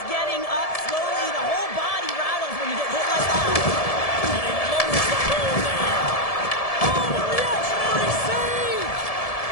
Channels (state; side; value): late; right; 1.7 ms